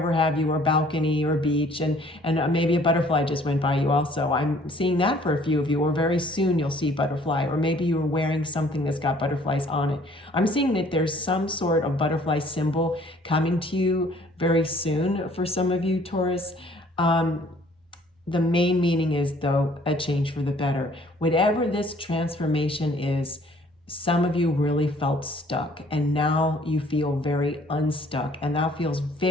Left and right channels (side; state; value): both; normal; correlation 0.57